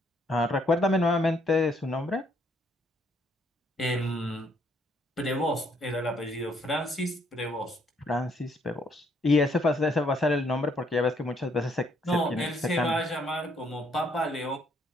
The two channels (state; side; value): normal; both; correlation 0.69